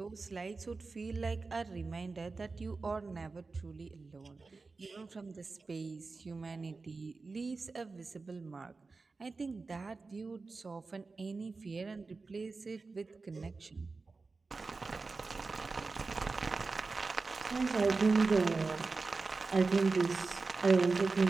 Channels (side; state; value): left; quieter; 4.0 dB